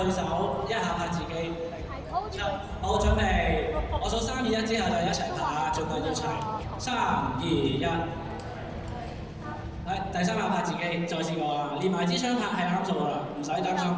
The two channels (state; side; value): identical; both; correlation 1.00